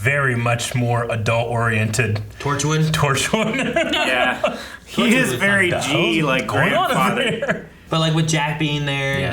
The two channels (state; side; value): identical; both; correlation 1.00